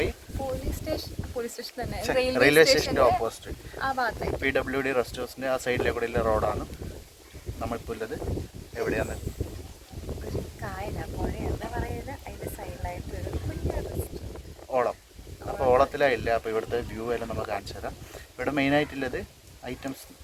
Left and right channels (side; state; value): both; identical; correlation 1.00